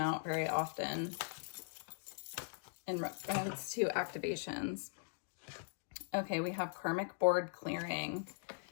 out very often in reference to activations. Okay, we have karmic board clearing.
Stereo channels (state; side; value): silent; right; digital silence